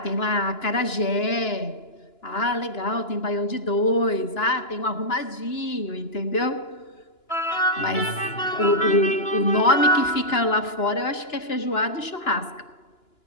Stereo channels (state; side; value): late; right; 2.9 ms